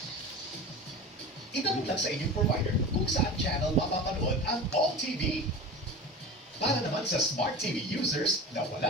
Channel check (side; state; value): both; normal; correlation 0.32